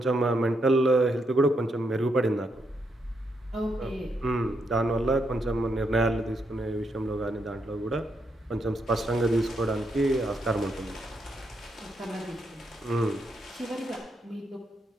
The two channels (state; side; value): normal; both; correlation 0.79